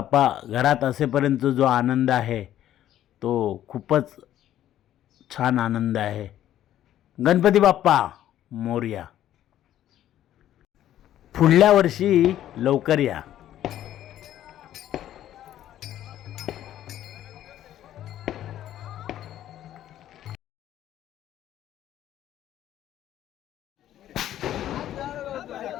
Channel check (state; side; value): quieter; right; 12.1 dB